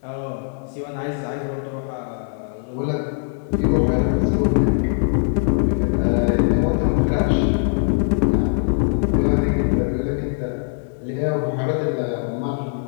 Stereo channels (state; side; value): silent; right; digital silence